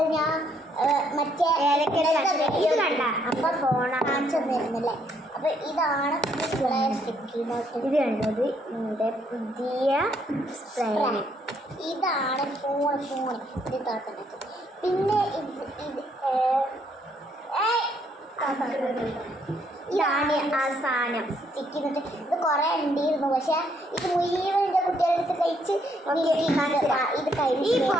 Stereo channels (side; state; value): both; normal; correlation 0.70